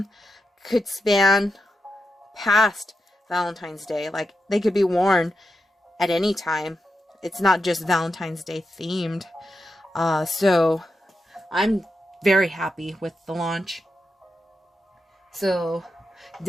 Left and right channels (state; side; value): normal; both; correlation 0.88